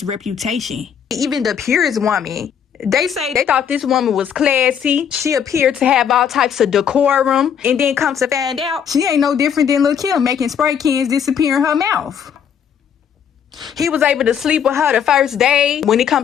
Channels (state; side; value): quieter; right; 8.1 dB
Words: reputation. Even the purest woman, they say they thought this woman was classy. She appeared to have all types of decorum. And then come to find out, she ain't no different than Lil' Kim making spray cans disappear in her mouth. He was able to sleep with her the first day. When it